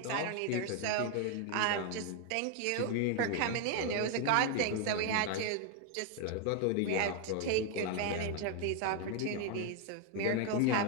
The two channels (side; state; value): both; different; correlation 0.01